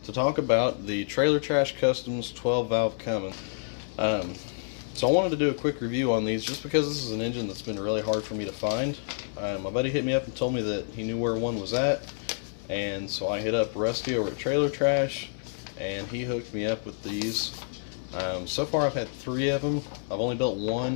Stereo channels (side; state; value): right; silent; 59 dB below the other